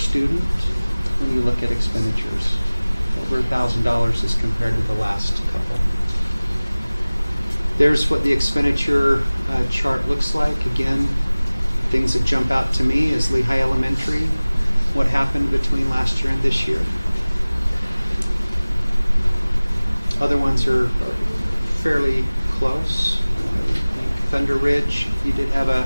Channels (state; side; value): inverted; both; correlation -1.00